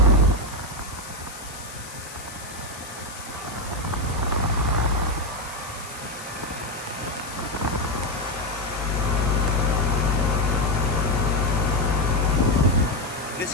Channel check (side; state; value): left; noise; hiss, 15 dB below the sound